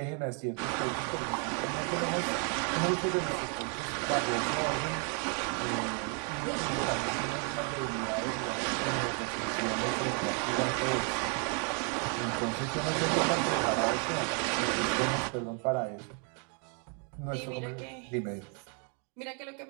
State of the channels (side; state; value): left; quieter; 39.1 dB